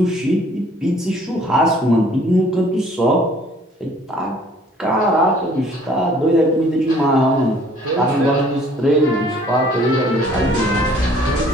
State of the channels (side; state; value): both; normal; correlation 0.57